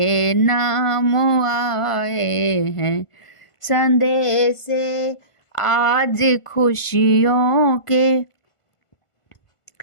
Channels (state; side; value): late; right; 1.5 ms